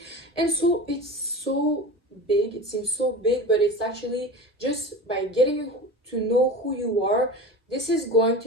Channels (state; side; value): normal; both; correlation 0.31